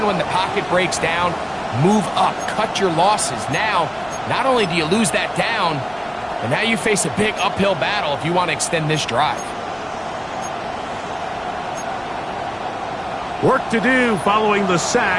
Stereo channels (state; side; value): identical; both; correlation 1.00